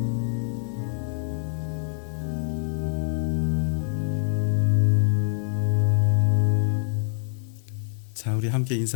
자, 우리 함께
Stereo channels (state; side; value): silent; right; 58 dB below the other